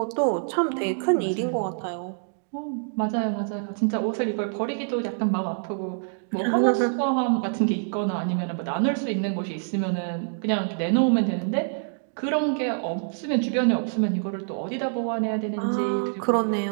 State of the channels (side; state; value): left; silent; digital silence